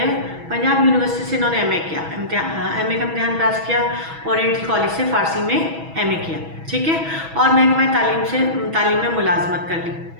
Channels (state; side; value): late; left; 6.1 ms